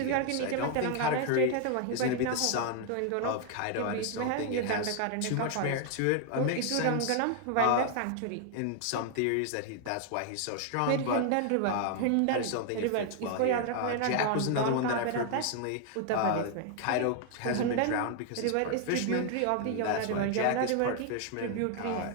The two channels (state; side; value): different; both; correlation 0.00